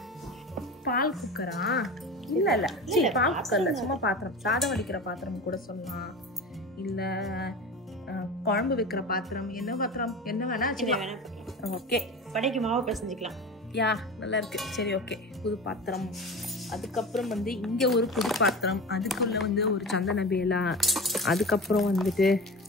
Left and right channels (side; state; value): both; normal; correlation 0.31